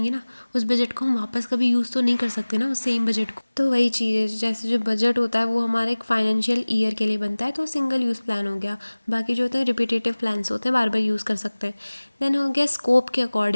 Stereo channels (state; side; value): inverted; both; correlation -1.00